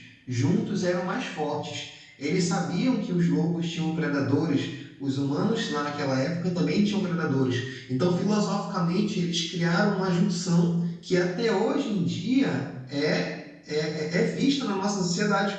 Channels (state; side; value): identical; both; correlation 1.00